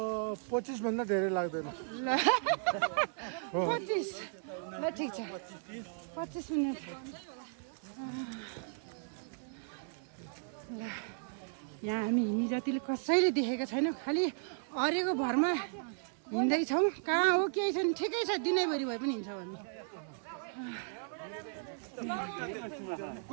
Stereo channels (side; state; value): left; silent; 54 dB below the other